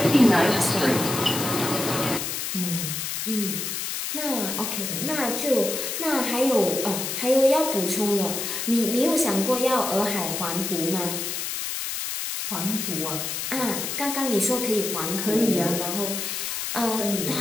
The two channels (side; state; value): left; noise; hiss, 3 dB below the sound